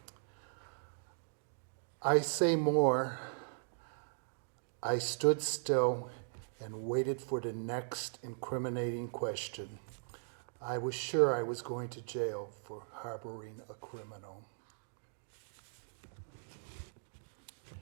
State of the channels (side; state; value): left; silent; digital silence